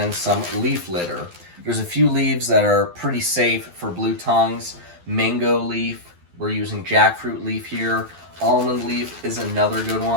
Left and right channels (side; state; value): left; late; 12 ms